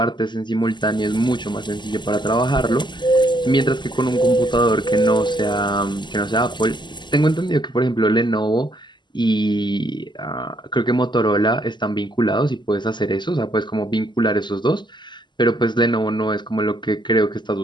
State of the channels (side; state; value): right; late; 0.22 ms